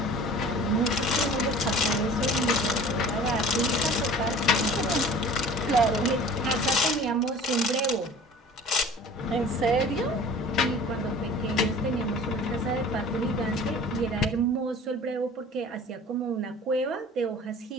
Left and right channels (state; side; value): normal; both; correlation 0.44